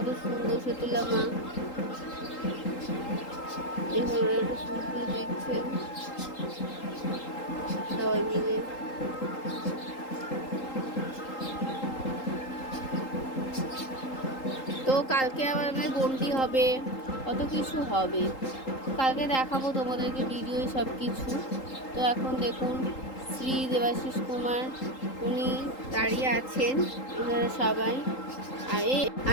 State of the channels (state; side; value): late; right; 3.8 ms